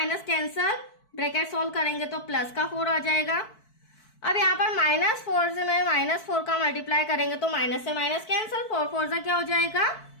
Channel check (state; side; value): late; right; 4.6 ms